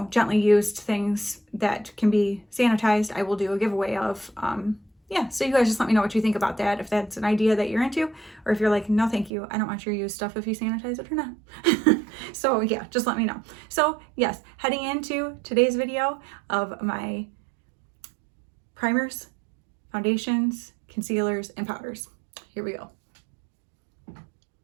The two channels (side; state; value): left; drops out; at 9.3 s